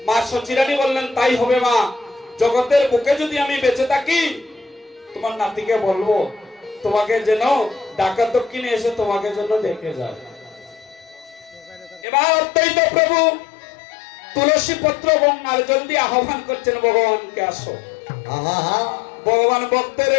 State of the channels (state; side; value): drops out; right; at 12.1 s